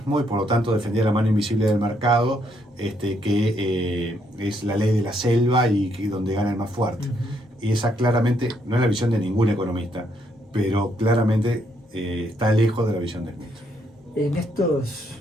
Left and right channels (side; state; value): both; normal; correlation 0.73